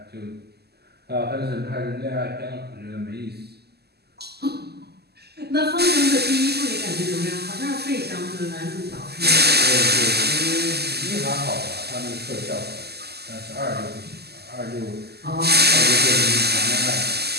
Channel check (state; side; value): late; left; 0.47 ms